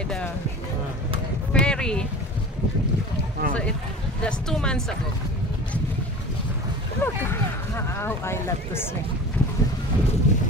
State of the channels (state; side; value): normal; both; correlation 0.37